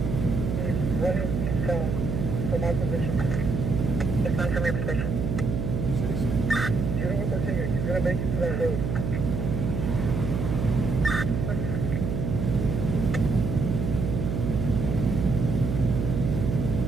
From my position. It's not from your position. You know what the thing is, he's gonna make it to that road.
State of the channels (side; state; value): right; noise; hum, 2 dB below the sound